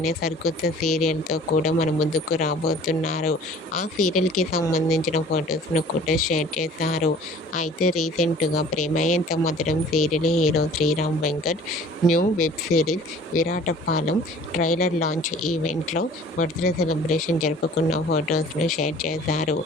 సరికొత్త సీరియల్తో కూడా మన ముందుకు రాబోతున్నారు. ఆ సీరియల్కి సంబంధించిన ఫొటోస్ను కూడా షేర్ చేశారు. అయితే రీసెంట్గా Prema Entha Madhuram serial hero Sriram Venkat new web series Viratapalem trailer launch ఈవెంట్లో బర్త్డే సెలబ్రేషన్ జరుపుకున్న ఫొటోస్ను షేర్ చేశారు.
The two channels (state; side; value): normal; both; correlation 0.49